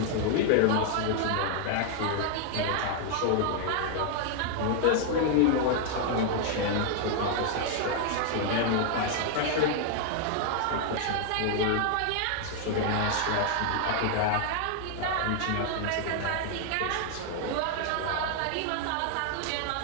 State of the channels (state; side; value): different; both; correlation 0.00